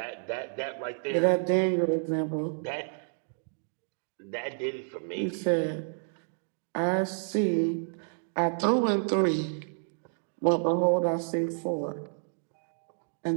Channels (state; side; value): silent; left; digital silence